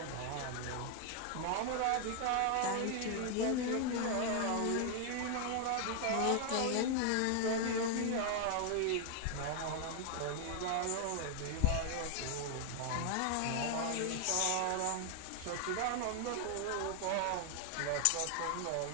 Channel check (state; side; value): different; both; correlation 0.00